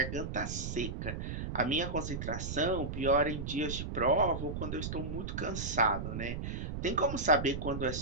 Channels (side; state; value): right; noise; rumble, 5 dB below the sound